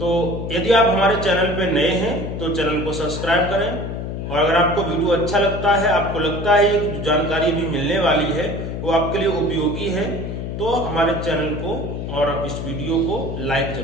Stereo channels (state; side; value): noise; left; hum, 5 dB below the sound